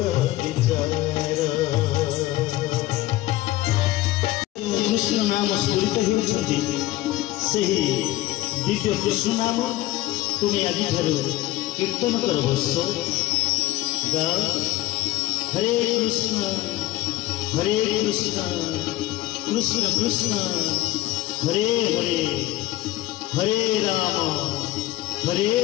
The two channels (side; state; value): right; quieter; 16.7 dB